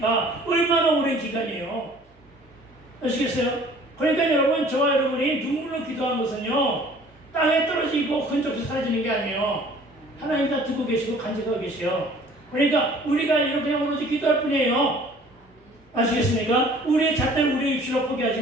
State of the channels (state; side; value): normal; both; correlation 0.52